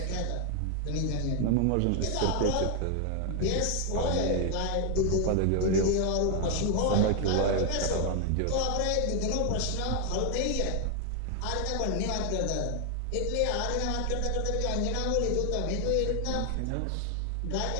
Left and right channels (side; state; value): both; different; correlation 0.00